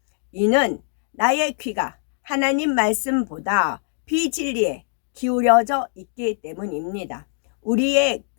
이는 나의 귀가 하나님 말씀보다 비진리에 기울여져 있기 때문입니다. 우리의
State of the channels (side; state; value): right; silent; digital silence